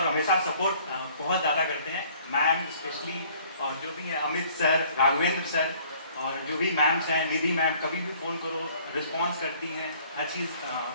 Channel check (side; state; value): both; inverted; correlation -0.56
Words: हमेशा सपोर्ट बहुत ज़्यादा करते हैं। मैम स्पेशली और जो भी है अमित सर, राघवेंद्र सर और जो भी मैम्स हैं, निधि मैम, कभी भी फ़ोन करो रिस्पॉन्स करती हैं, हर चीज़